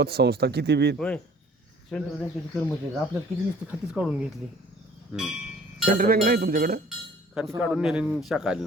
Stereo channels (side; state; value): both; normal; correlation 0.53